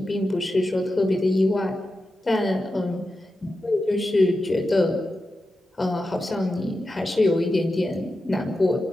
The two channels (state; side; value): normal; both; correlation 0.91